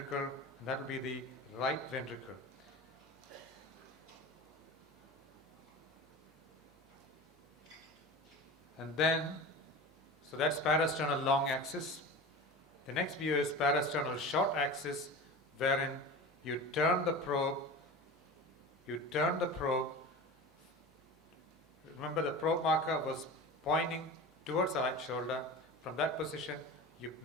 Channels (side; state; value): both; normal; correlation 0.32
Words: that will be the right ventricle. And then, so that's parasternal long axis. The next view is parasternal short axis, wherein you turn the probe. Remember, the probe marker was pointing towards the right shoulder. From that position, you